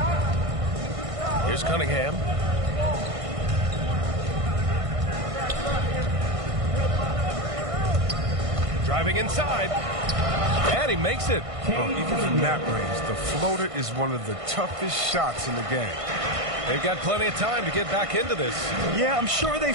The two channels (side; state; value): left; late; 1.5 ms